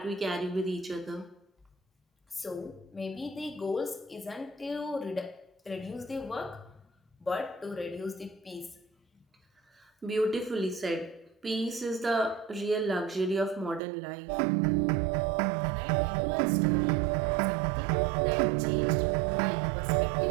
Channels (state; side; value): drops out; left; at 13.8 s